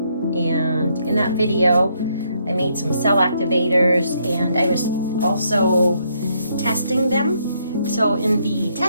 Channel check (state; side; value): inverted; both; correlation -0.73